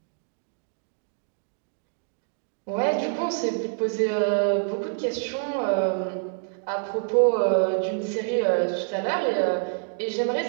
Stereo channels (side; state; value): left; silent; digital silence